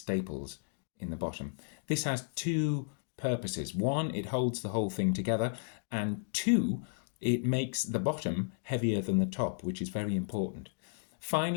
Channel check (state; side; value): silent; right; digital silence